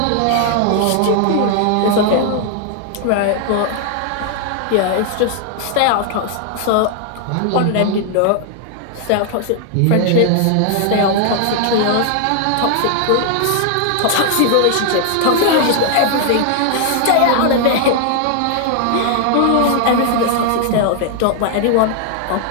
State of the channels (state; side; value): different; both; correlation 0.00